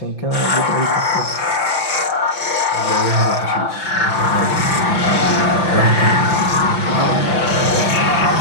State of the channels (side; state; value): right; late; 5.9 ms